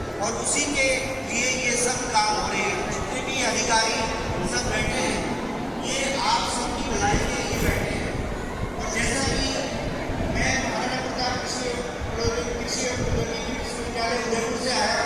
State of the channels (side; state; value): both; identical; correlation 1.00